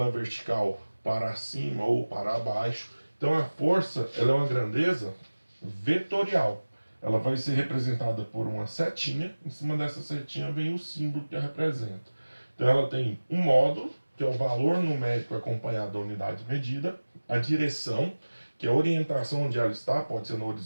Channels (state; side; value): inverted; both; correlation -1.00